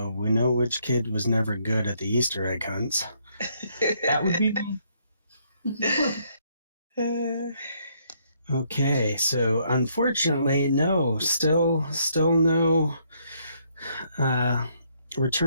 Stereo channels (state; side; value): inverted; both; correlation -0.71